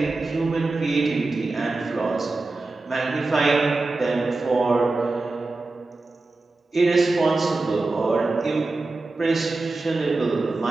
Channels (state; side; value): quieter; left; 3.3 dB